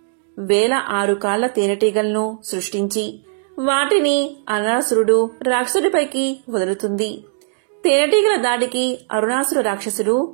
1006 కాళ్ల తేనెటీగలను సృష్టించి వాటిని అరుణాసురుడు రాక్షసుడిపైకి వదులుతుంది. తేనెటీగల దాడికి అరుణాసుర రాక్షసుడు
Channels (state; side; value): silent; left; digital silence